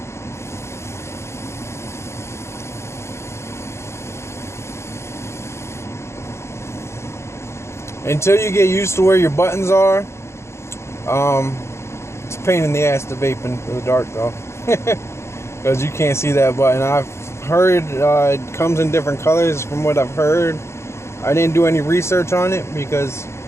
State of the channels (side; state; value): right; late; 0.13 ms